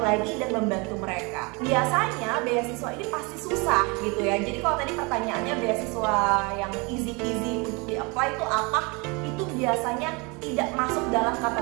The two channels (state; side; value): quieter; left; 28.9 dB